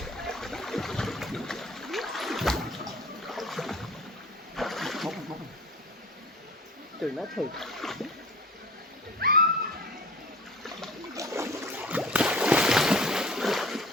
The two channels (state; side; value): normal; both; correlation 0.43